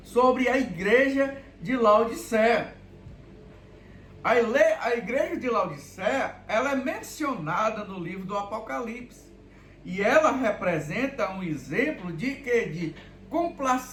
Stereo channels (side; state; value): both; identical; correlation 1.00